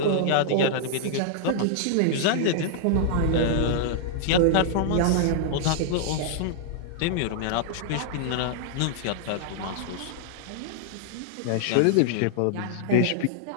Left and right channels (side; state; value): both; different; correlation -0.01